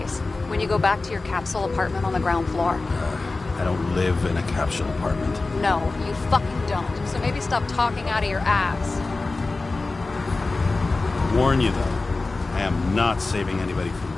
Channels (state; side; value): quieter; right; 3.5 dB